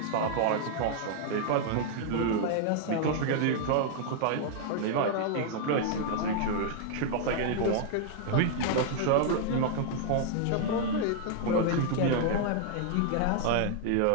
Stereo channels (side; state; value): both; different; correlation -0.01